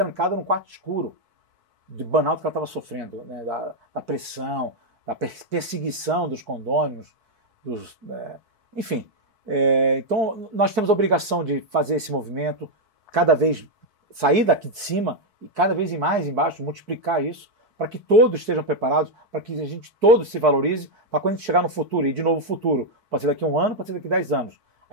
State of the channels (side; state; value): left; late; 4.6 ms